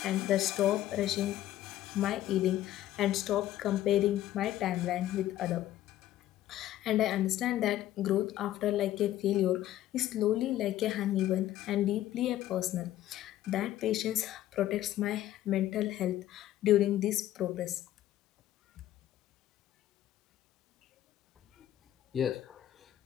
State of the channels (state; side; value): quieter; right; 13.5 dB